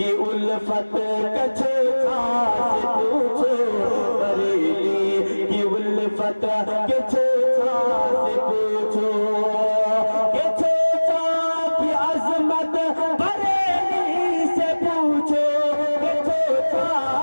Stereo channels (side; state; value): both; inverted; correlation -1.00